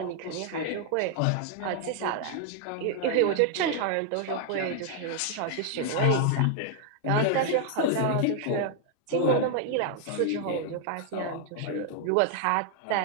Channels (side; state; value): both; different; correlation 0.00